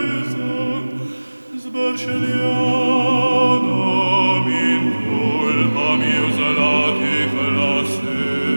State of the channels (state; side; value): inverted; both; correlation -1.00